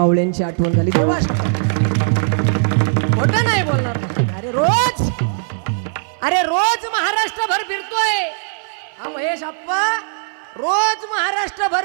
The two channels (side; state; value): left; silent; 59 dB below the other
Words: आठवण झाली. देवा खोटं नाही बोलणार. अरे रोज महाराष्ट्रभर फिरतोय हा महेश आप्पा, रोज